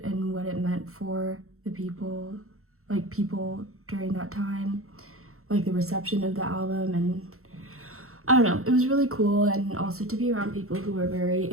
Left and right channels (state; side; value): late; left; 0.63 ms